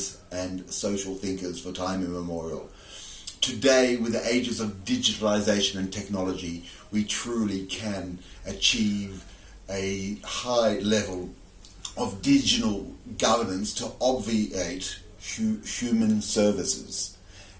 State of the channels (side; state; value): both; identical; correlation 1.00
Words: and social thinkers for time immemorial. Today, with the ages of digitalisation and technology, we truly can achieve a high level of digital governance to obviate human services.